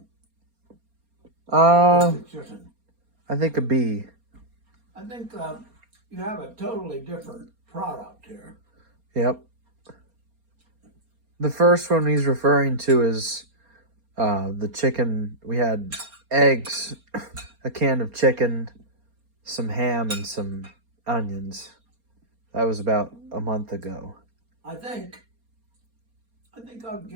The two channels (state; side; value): late; left; 4.3 ms